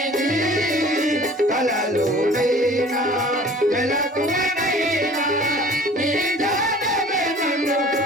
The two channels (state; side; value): normal; both; correlation 0.48